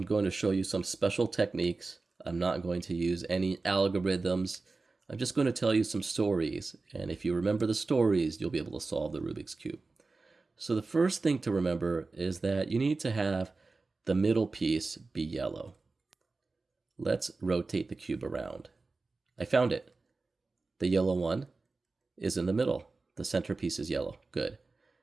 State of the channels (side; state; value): left; quieter; 3.8 dB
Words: going to show you some special techniques. I'm not going to use any algorithms. I'm just going to tell you some stories, and if you remember the stories, you'll be able to solve the Rubik's Cube. So the first thing to remember is that you need to have the middle piece be yellow. Let's rotate the cube around. I found it. The yellow one is in the middle. The centerpiece is yellow. Good.